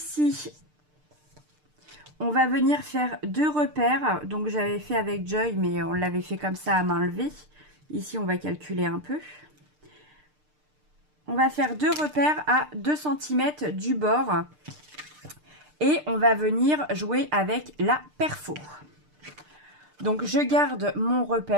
on va venir faire 2 repères. Donc, j'avais fait avec Joy, mais on l'avait fait comme ça à main levée. Ici, on va calculer un peu. On va faire 2 repères à 2 cm du bord. Et on va venir jouer avec la perfo. Donc, je garde mon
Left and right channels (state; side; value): late; left; 6.6 ms